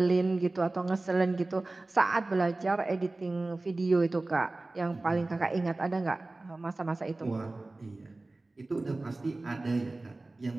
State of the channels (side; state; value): left; quieter; 3.0 dB